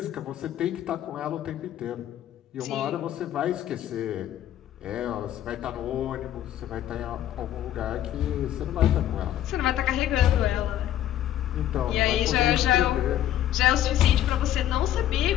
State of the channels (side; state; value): right; quieter; 12.0 dB